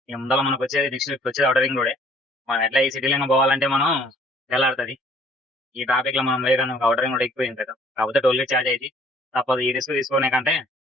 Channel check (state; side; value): normal; both; correlation 0.57